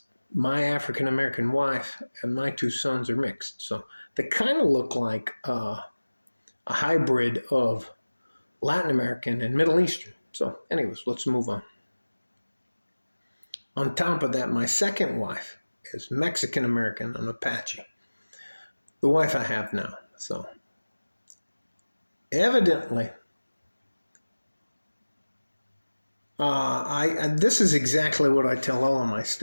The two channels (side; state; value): both; inverted; correlation -1.00